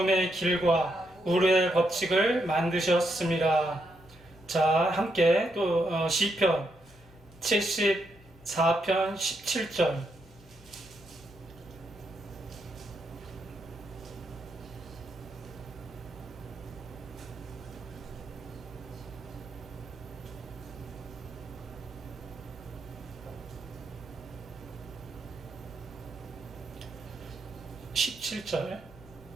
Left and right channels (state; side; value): normal; both; correlation 0.79